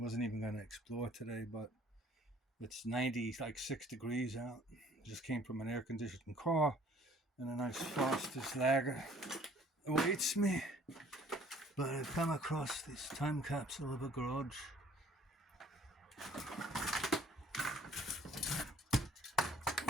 even going to explore today, but it's 96 degrees out. Just came from an air-conditioned car, and a nice Foster's Lager awaits me. But I've come across this time capsule of a garage.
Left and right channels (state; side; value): normal; both; correlation 0.56